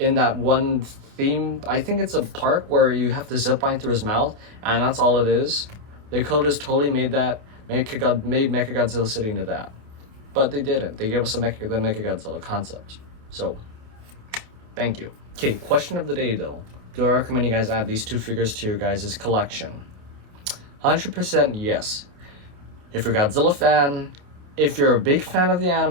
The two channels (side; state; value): left; late; 28 ms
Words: one theme. I think it's a park where you have to zip line through his mouth, and that's all it is. They could have just totally made Mechagodzilla City into that. But they didn't. They gave us the Mechagodzilla concept. So, thank you. Okay, question of the day though. Do I recommend you guys add these two figures to your guys' collection? 100% yes. If you're a Godzilla fan, if you're a big fan of the